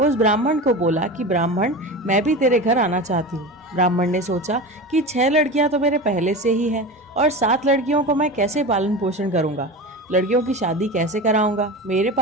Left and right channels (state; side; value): normal; both; correlation 0.28